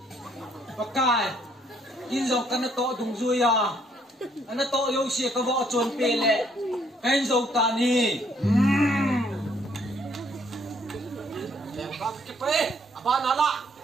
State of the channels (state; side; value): normal; both; correlation 0.67